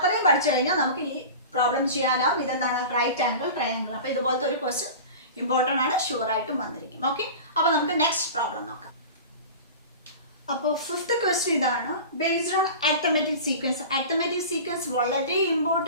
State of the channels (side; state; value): both; inverted; correlation -0.34